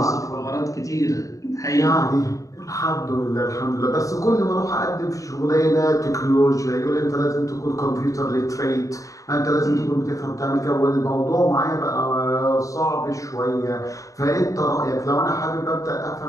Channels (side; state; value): right; late; 0.16 ms